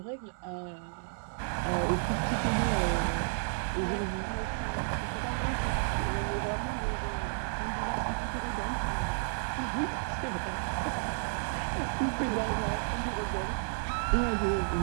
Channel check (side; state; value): left; silent; 56 dB below the other